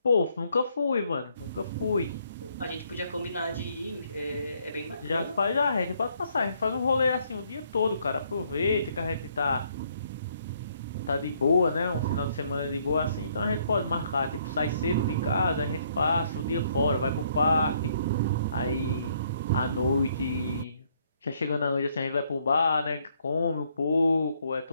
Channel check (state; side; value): inverted; both; correlation -0.69